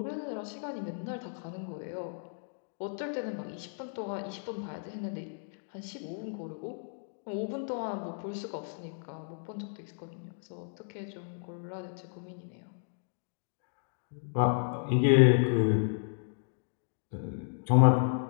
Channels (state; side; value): silent; right; digital silence